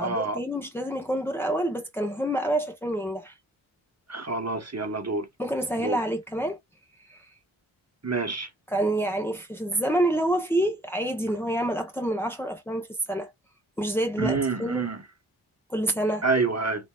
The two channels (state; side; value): normal; both; correlation 0.58